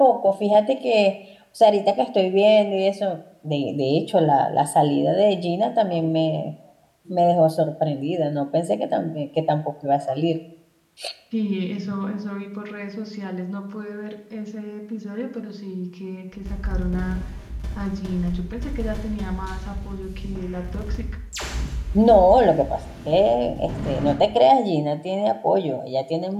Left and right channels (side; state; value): both; identical; correlation 1.00